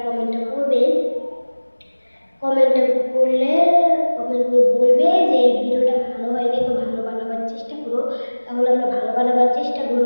কমেন্টটা করবে, কমেন্টটা করলে কমেন্ট করে বলবে যে এই ভিডিওটা ভালো হয়নি,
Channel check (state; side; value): inverted; both; correlation -1.00